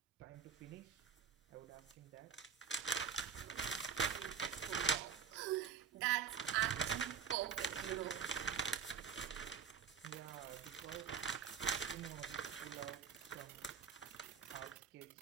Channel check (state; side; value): quieter; left; 6.8 dB